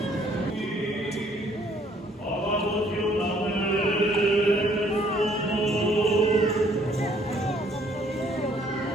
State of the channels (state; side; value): normal; both; correlation 0.63